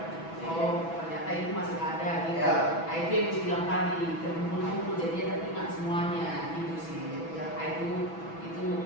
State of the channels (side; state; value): right; late; 6.1 ms